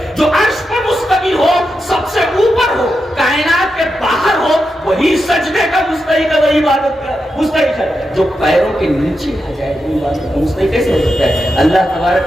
جو عرش پر مستوی ہو, سب سے اوپر ہو, کائنات کے باہر ہو, وہی سجدے کا مستحق ہے, وہی عبادت کا مستحق ہے. جو پیروں کے نیچے آ جائے وہ عبادت کا مستحق کیسے ہو سکتا ہے؟ اللہ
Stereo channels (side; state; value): both; normal; correlation 0.87